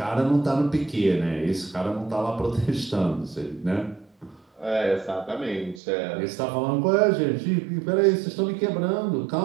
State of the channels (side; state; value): left; drops out; at 5.8 s